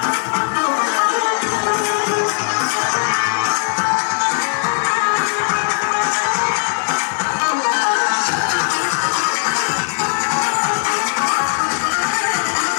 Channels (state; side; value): silent; right; digital silence